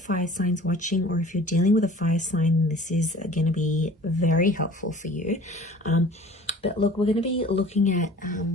signs watching, or if you're dealing with a fire sign, this is going to be very helpful for you. But look, we're going to be looking at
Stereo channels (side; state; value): both; normal; correlation 0.46